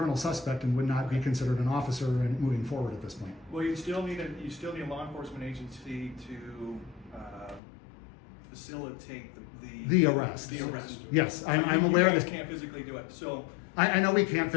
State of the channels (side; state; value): right; drops out; at 7.6 s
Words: suspect and would not be considered an officer and moving forward at this point. well, you still need a law enforcement agency to facilitate The arrest. The arrest. Yes, I'm aware of You this. guys can't physically do it, so. I know we can't